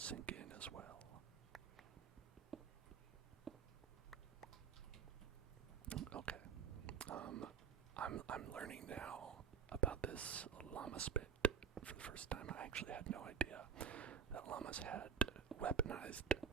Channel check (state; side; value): quieter; left; 7.1 dB